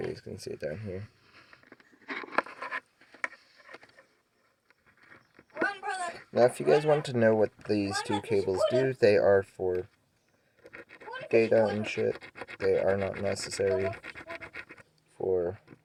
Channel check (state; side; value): identical; both; correlation 1.00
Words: see it down here. Run, brother. Now, if you guys want to know what these two cables do, they are for data and shit. They are not necessary for